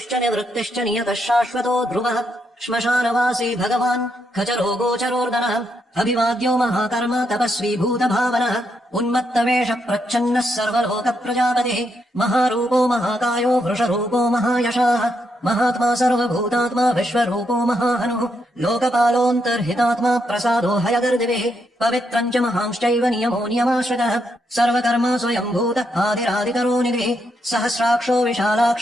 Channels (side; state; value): both; normal; correlation 0.79